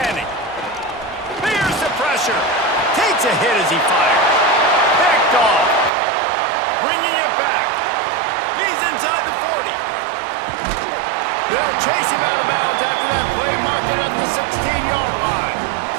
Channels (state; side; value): drops out; left; at 5.9 s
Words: Fears the pressure. Takes a hit as he fires. Picked off. Bringing it back. He's inside the 40. They'll chase him out of bounds after that play, marked it at the 16-yard line.